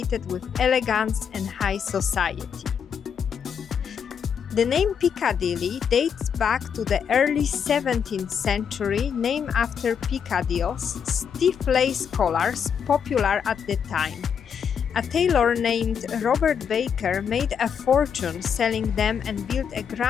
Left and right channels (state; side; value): quieter; right; 7.3 dB